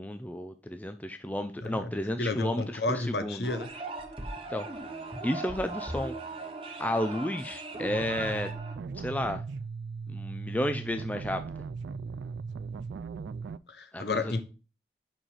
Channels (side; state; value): both; normal; correlation 0.67